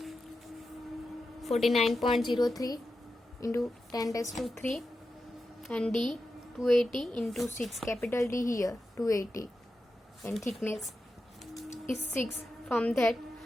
49.03 into 10 raised to 3 and d 280 into 6, capital D here 280, and thickness is 6. From that,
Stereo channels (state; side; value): normal; both; correlation 0.90